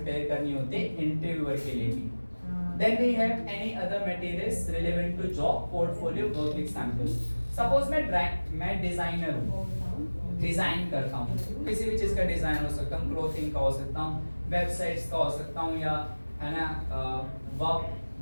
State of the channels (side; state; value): both; inverted; correlation -1.00